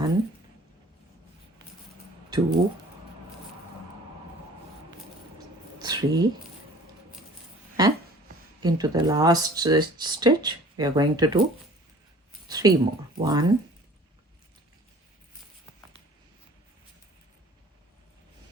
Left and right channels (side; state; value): both; normal; correlation 0.48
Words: 2, 3, and into the last stitch we are going to do 3 more. 1,